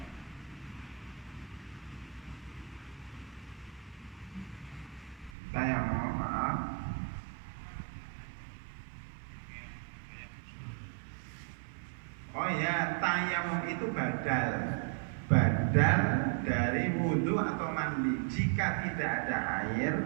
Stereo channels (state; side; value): drops out; left; at 5.3 s